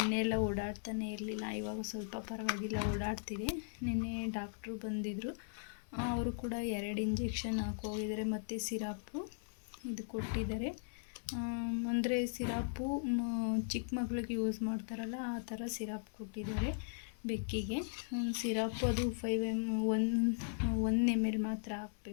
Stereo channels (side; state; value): right; silent; 52 dB below the other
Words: ಎಲ್ಲ ಓಡಾಡ್ತಾನೆ ಇರಲಿಲ್ಲ. ಇವಾಗ ಸ್ವಲ್ಪ ಪರವಾಗಿಲ್ಲ, ಓಡಾಡ್ತಿದೆ. ನಿನ್ನೆ ಡಾಕ್ಟ್ರು ಬಂದಿದ್ದರು. ಅವರು ಕೂಡ 2 ಇಂಜೆಕ್ಷನ್ ಹಾಕೋಗಿದ್ದಾರೆ ಮತ್ತು ಸಿರಪ್ಪು ಇದು ಕೊಟ್ಟಿದ್ದಾರೆ. ಅಂದರೆ ಸಿರಪ್ಪು ಚಿಕ್ಕ ಮಕ್ಳಿಗೆ ಯೂಸ್ ಮಾಡ್ತಾರಲ್ಲ ಆ ಥರ ಸಿರಪ್ ಕೊಟ್ಟಿದ್ದಾರೆ ಬೆಕ್ಕಿಗೆ. ಸಿರಪ್ಪು ಅದು 1 ml ಮಾತ್ರ